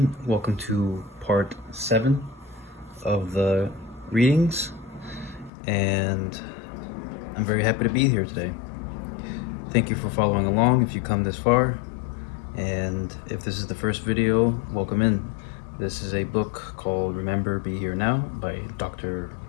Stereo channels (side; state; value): right; drops out; at 5.5 s